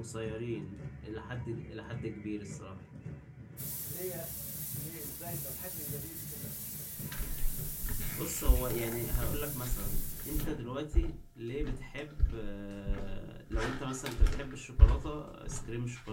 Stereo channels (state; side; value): identical; both; correlation 1.00